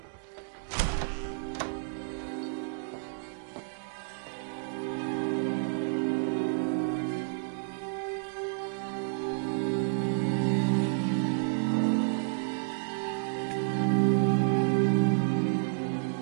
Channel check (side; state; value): left; silent; digital silence